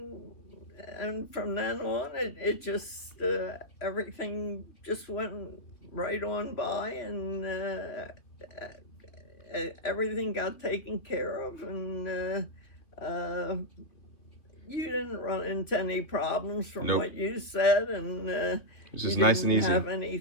And from then on, it just everything just went right on by, and everything got taken care of, and you didn't run into any problems from Nope. what you said, and It's you just nice and didn't easy. have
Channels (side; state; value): right; late; 3.1 ms